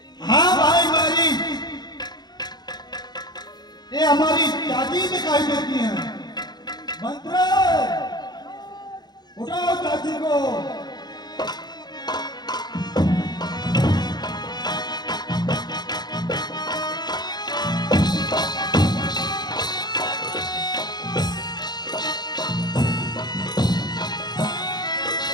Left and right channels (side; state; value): right; late; 0.20 ms